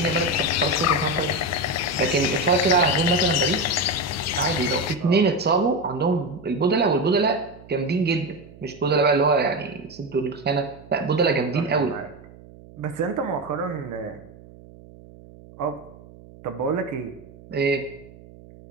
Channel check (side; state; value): right; noise; hum, 21 dB below the sound